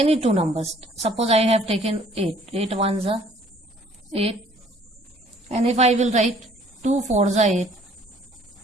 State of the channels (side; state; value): both; normal; correlation 0.58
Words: two numbers. Suppose I have taken 8. 8 1s are 8. And if I will right 2 4s are 8.